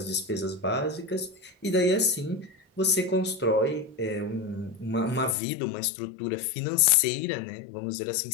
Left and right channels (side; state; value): right; drops out; at 5.4 s